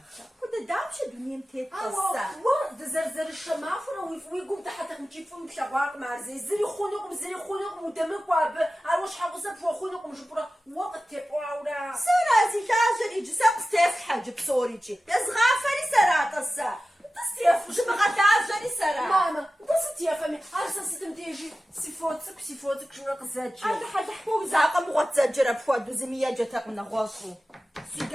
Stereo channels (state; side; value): normal; both; correlation 0.95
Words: كنت دامشة دنيا متيت قصة دزرزر الشمافرة ويقوم تحت مجيبهم بشواق مع زي خونقم ودمك واب عروش حقوصة بخونقم جبرة وقت تبعورا سرازي كاجر يجي ساقس تفحج بصوريجي يزغافري سراتسا تستيف جبغة تعجري سرا ماما بس تيفهمي عارسة ستم تيجي سيفوتك شراق زاجي هذا حد حكو زاقة مغط زاجرة بفواد وزمية جاتك من غوصو